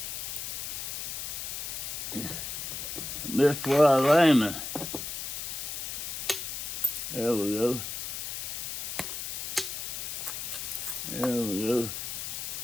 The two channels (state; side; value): noise; left; hiss, 4 dB below the sound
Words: Missed where I was aiming. There we go. There we go.